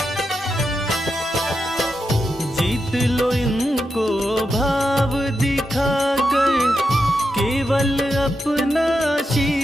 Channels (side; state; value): both; normal; correlation 0.87